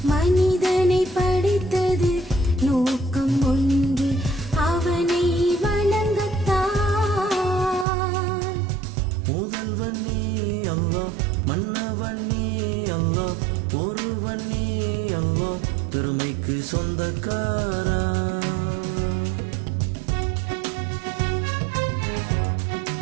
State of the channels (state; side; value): drops out; left; at 7.9 s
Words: மனிதனை படைத்தது நோக்கம் ஒன்று, அவனை வணங்கத்தான். முதல்வன் நீ அல்லாஹ், மன்னவன் நீ அல்லாஹ், ஒருவன் நீ அல்லாஹ், பெருமைக்கு சொந்தக்காரா.